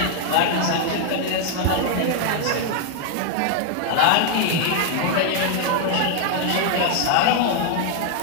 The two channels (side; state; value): both; different; correlation 0.00